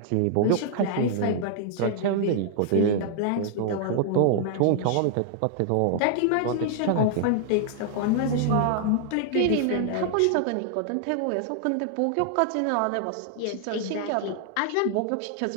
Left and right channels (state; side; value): different; both; correlation 0.00